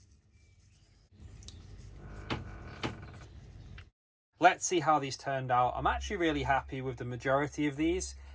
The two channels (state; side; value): identical; both; correlation 1.00